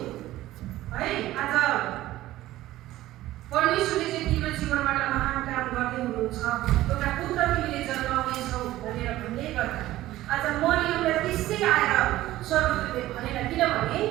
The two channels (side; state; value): left; quieter; 15.6 dB